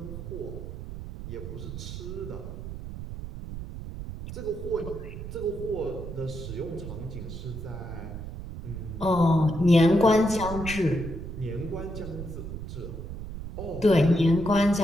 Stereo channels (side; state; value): right; noise; rumble, 9 dB below the sound